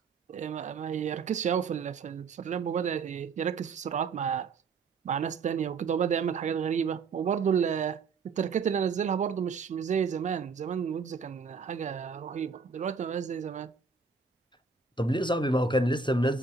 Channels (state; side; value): quieter; left; 4.9 dB